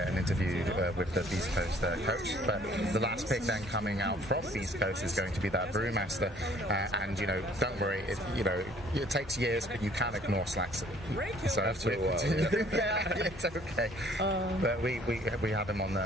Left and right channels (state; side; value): normal; both; correlation 0.58